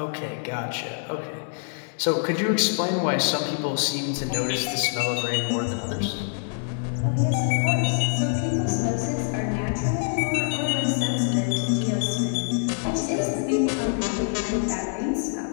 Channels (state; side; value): silent; right; 62 dB below the other